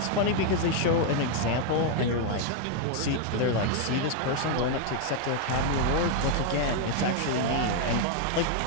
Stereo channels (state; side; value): different; both; correlation 0.00